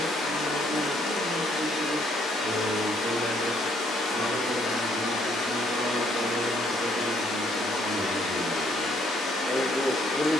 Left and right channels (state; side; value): normal; both; correlation 0.67